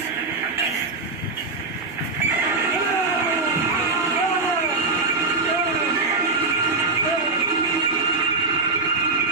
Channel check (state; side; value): quieter; left; 3.8 dB